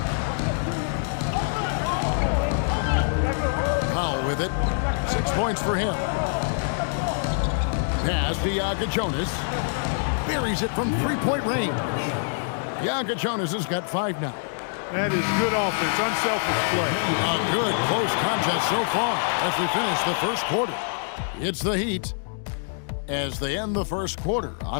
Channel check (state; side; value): silent; right; digital silence